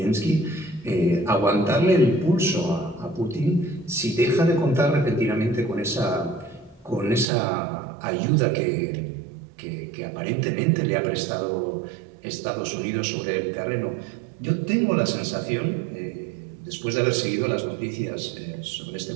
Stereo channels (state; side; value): drops out; left; at 7.2 s